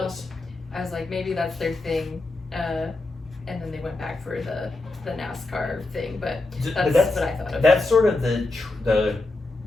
Well, I was like, maybe that's their thing. And then they went back for the NASCAR thing, but that's what I thought of. That's sort of the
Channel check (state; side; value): quieter; right; 3.1 dB